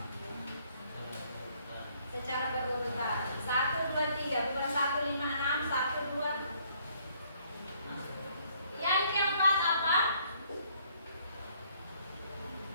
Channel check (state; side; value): inverted; both; correlation -0.66